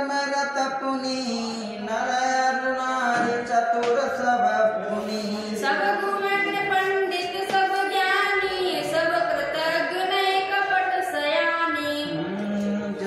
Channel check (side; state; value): both; identical; correlation 1.00